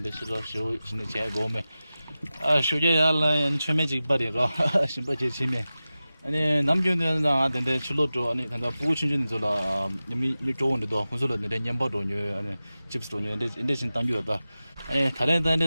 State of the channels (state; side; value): inverted; both; correlation -0.95